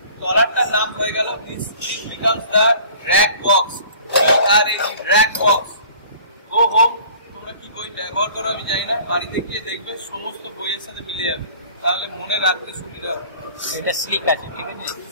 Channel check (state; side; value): inverted; both; correlation -0.49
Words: তলারটার নাম হয়ে গেল becomes the drag box. Drag box. Go home, তোমরা কি বই ব্যবহার করো আমি জানি না, বাড়িতে গিয়ে দেখবে সমস্ত বইয়ের সাথে মিলে যাবে, তাহলে মনে রাখতে সুবিধা হবে। এটা স্লিক আছে, ঠিক আছে।